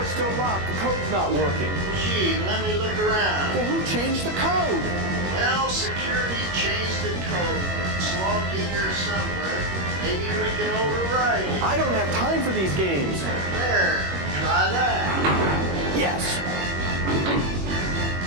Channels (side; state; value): left; late; 21 ms